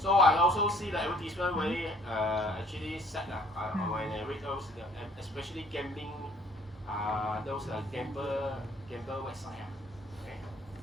I also see the advertisement very actually sad when I read those, especially gambling, those gamble website. Okay.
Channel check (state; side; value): normal; both; correlation 0.58